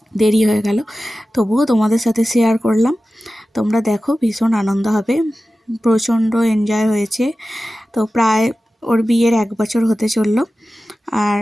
দেরি হয়ে গেল। তবুও তোমাদের সাথে শেয়ার করলাম। তোমরা দেখো, ভীষণ আনন্দ হবে, প্রচণ্ড এনজয় হয়েছে। তো প্রায় ওর বিয়ের 1 বছর হতে চললো। আর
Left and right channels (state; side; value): normal; both; correlation 0.95